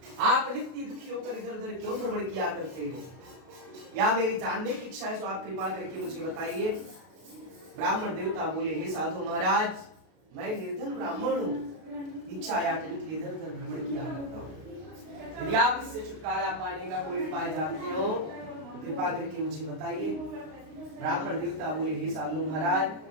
आप नित्य दुखी होकर इधर उधर क्यों भ्रमण किया करते हो? या मेरी जानने की इच्छा है, तो आप कृपा करके मुझे बताइए। ब्राह्मण देवता बोले, हे साधु महाराज, मैं निर्धन ब्राह्मण हूँ, भिक्षा याचने के लिए इधर उधर भ्रमण किया करता हूँ। यदि आप इससे छुटकारा पाने का कोई उपाय जानते हो तो कृपा करके मुझे बताइए। ब्राह्मण देवता बोले, हे साधु महाराज,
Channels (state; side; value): late; left; 32 ms